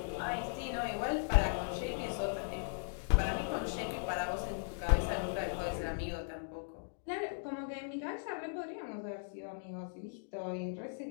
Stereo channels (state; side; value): silent; right; digital silence